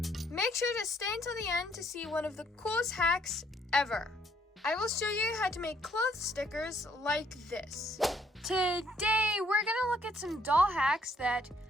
Make sure to stay until the end to see one of the coolest hacks ever. I will show you how to make clothes stickers like this. Today, we're gonna look at some doll hacks that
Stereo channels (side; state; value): both; normal; correlation 0.67